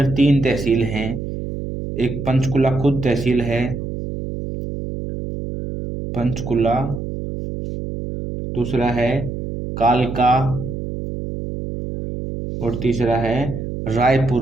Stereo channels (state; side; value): noise; right; hum, 6 dB below the sound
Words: 3 तहसील हैं। एक पंचकुला खुद तहसील है, पंचकुला। दूसरा है कालका और तीसरा है